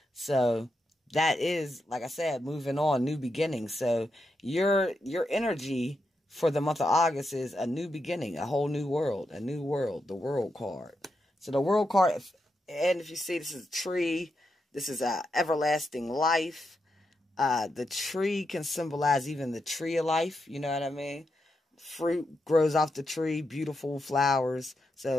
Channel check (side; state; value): both; normal; correlation 0.85